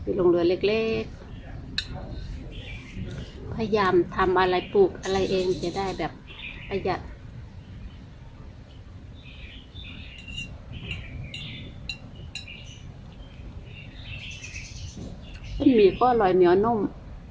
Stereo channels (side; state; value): both; identical; correlation 1.00